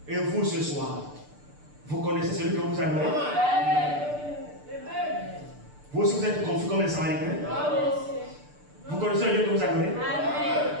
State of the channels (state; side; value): late; left; 6.8 ms